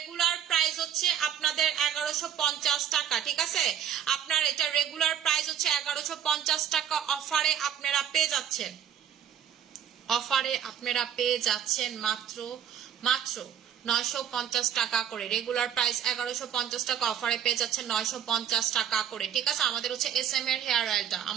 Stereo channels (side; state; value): left; quieter; 9.2 dB